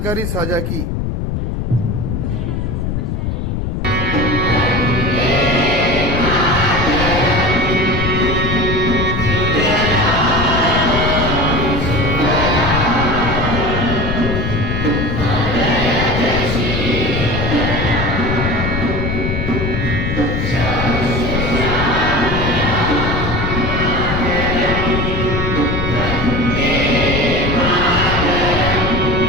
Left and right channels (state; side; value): noise; left; rumble, 2 dB below the sound